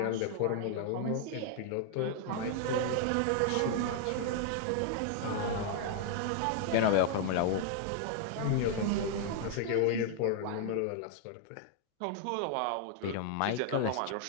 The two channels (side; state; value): both; different; correlation 0.00